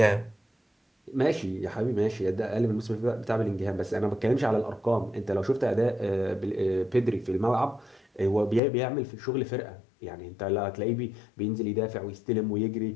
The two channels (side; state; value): right; drops out; at 8.6 s